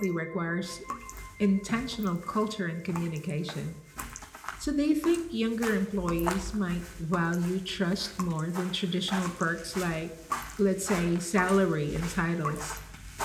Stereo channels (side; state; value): both; identical; correlation 1.00